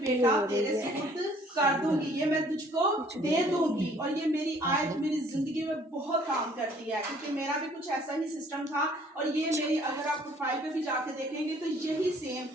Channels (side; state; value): both; normal; correlation 0.58